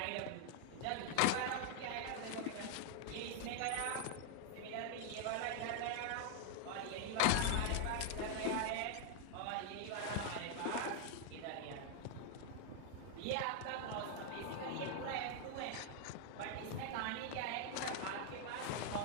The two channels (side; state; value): both; different; correlation 0.00